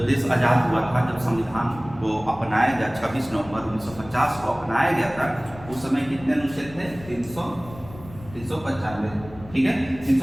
देश आजाद हुआ था, जब संविधान को अपनाया गया 26 नवंबर 1950 को अपनाया गया था, उस समय कितने अनुच्छेद थे? 395। ठीक है,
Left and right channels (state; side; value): noise; left; rumble, 18 dB below the sound